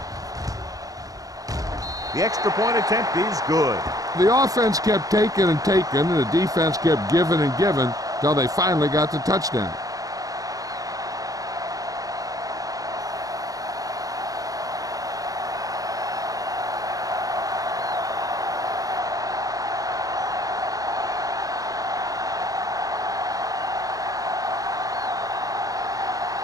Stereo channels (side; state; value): left; late; 0.17 ms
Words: The extra point attempt is good. The offense kept taking and taking, and the defense kept giving and giving until they finally got the touchdown.